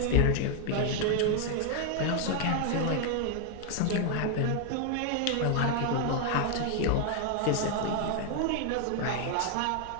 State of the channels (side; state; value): both; different; correlation 0.00